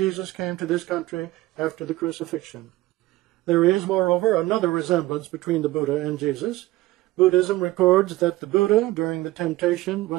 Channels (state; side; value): quieter; left; 17.8 dB